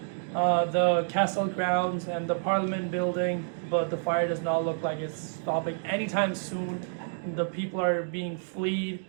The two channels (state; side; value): silent; left; digital silence